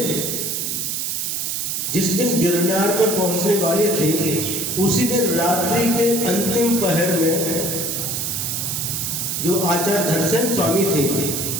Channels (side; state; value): right; noise; hiss, 1 dB below the sound